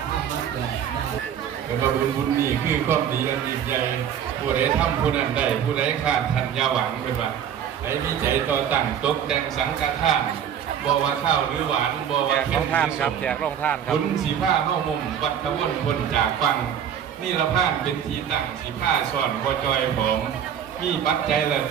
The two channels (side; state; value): left; quieter; 8.9 dB